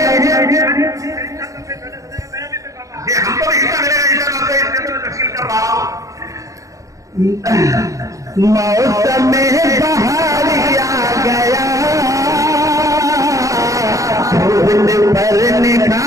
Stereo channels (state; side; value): late; left; 0.16 ms